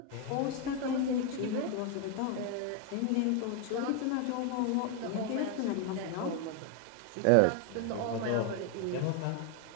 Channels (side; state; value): both; different; correlation 0.01